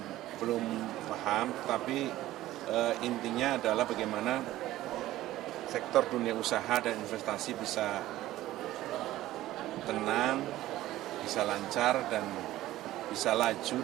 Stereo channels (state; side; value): quieter; left; 15.3 dB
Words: belum paham, tapi intinya adalah bagaimana sektor dunia usaha dan investasi bisa tenang, bisa lancar, dan bisa laju